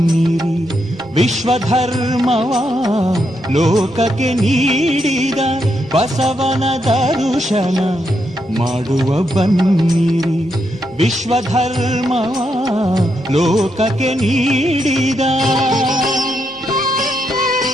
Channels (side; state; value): both; normal; correlation 0.81